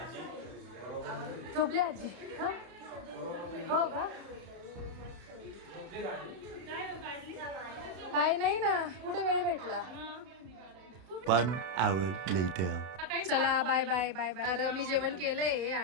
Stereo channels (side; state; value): left; late; 32 ms